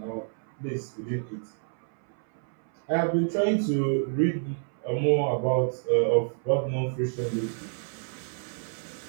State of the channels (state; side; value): silent; left; 59 dB below the other